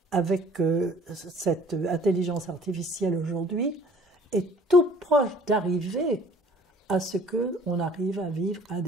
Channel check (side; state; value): both; normal; correlation 0.53